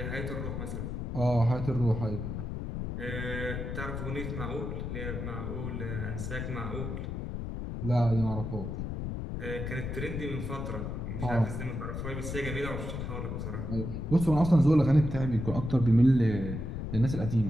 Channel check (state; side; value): noise; left; rumble, 4 dB below the sound